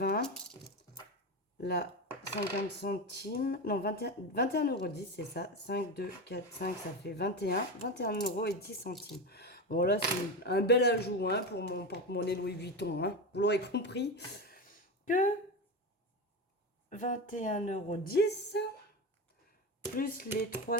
Là, 50 centimes. Non, 21,10 euros, c'est ça. 5, 2, 4, 5, ça fait 21 euros et 10 centimes. Bon, là, c'est un bel ajout hein, pour mon porte-monnaie Louis Vuitton. Hein. Vous l'aurez compris que 21,10 euros plus les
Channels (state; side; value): normal; both; correlation 0.20